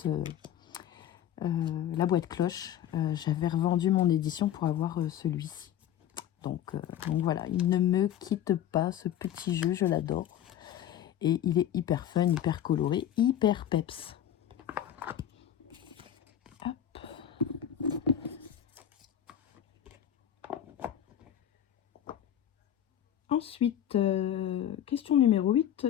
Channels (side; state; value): right; quieter; 10.5 dB